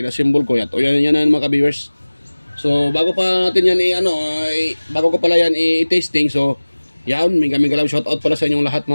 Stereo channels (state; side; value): inverted; both; correlation -1.00